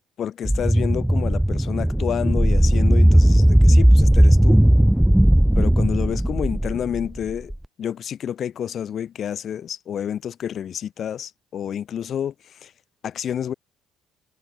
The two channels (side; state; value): both; normal; correlation 0.97